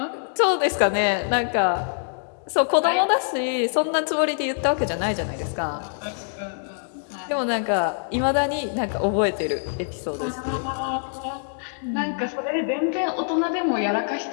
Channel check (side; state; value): right; silent; digital silence